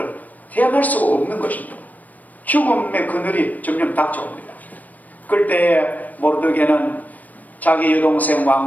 대항할 수가 없는 것입니다. 죽음의 그늘이 점점 닥쳐옵니다. 그때 모르드게는 자기 여동생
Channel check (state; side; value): late; right; 0.079 ms